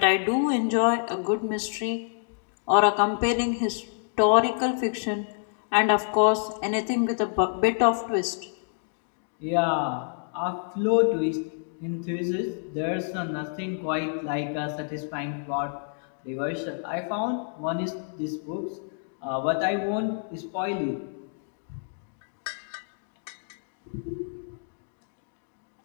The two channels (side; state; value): right; silent; digital silence